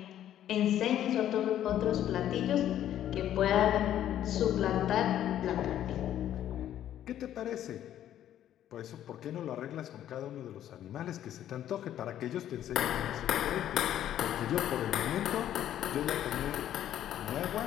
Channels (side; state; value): right; quieter; 11.4 dB